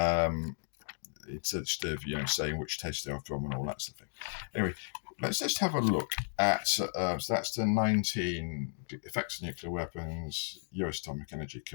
Instead of saying which test they are from and all that sort of thing. Anyway, let's just have a look at so that's the 19 Effects of Nuclear Weapons, US Atomic Energy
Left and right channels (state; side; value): silent; right; digital silence